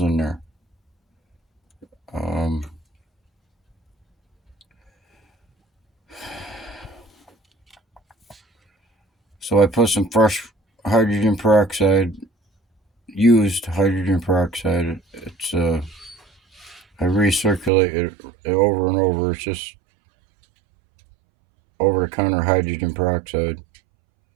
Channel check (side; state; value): left; drops out; at 17.7 s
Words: in there. So I put some fresh hydrogen peroxide, used hydrogen peroxide. It's I recirculate it over and over. It's just over-the-counter hydrogen peroxide.